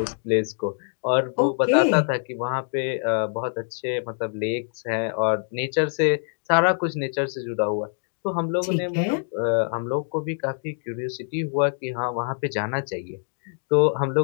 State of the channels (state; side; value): silent; right; 61 dB below the other